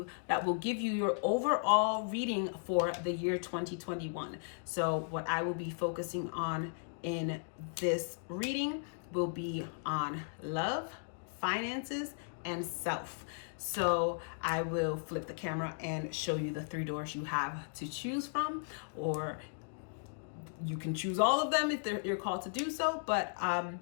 that will give you your overall reading for the year 2021. So what I will be focusing on in this reading will be on love, finances, and self. So I will flip the camera and show you the 3 doors you have to choose from, or you can choose all of them if you're called to do so, but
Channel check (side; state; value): right; silent; digital silence